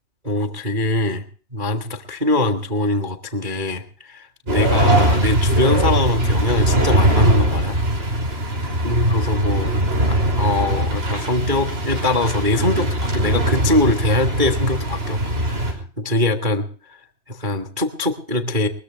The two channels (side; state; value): left; late; 2.3 ms